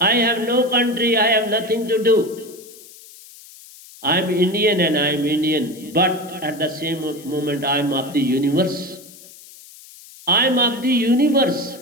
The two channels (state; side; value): noise; left; hiss, 20 dB below the sound